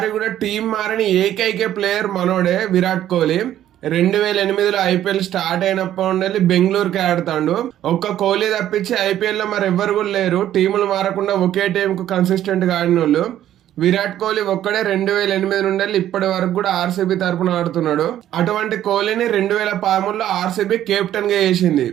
కూడా టీం మారని ఏకైక ప్లేయర్ మనోడే విరాట్ కోహ్లీ. 2008లో ఐపీఎల్ స్టార్ట్ అయినప్పటి నుండి బెంగళూరుకి ఆడుతాడు. ఒక్క కోహ్లీ తప్పించి ఐపీఎల్ లో మరి ఎవ్వరు కూడా లేరు టీములు మారకుండా ఒకే టీం కు కన్సిస్టెంట్ గా ఆడిన వాళ్ళు. విరాట్ కోహ్లీ ఒక్కడే 2008 నుండి ఇప్పటి వరకు కూడా ఆర్సీబీ తరపున ఆడుతున్నాడు. అటువంటి కోహ్లీని 2013లో ఆర్సీబీ కెప్టెన్ గా చేసింది.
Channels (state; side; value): quieter; left; 11.9 dB